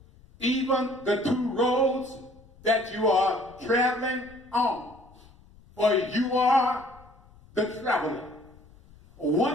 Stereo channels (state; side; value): noise; left; rumble, 25 dB below the sound